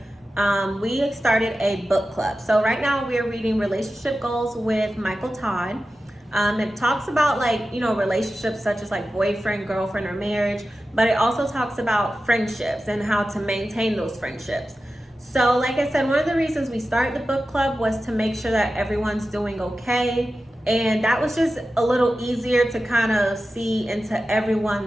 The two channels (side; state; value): both; normal; correlation 0.93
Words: We started a book club. So right now we're reading Relationship Goals with Michael Todd. It talks about relationships such as like boyfriend, girlfriend, or marriage, but it also talks about friendships and how to maintain those friendships. So like I said, one of the reasons we started the book club was to make sure that everyone's doing okay. And that was just a little easier to kind of see into